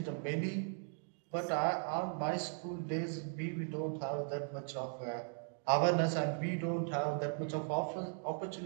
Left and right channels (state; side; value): silent; left; 52 dB below the other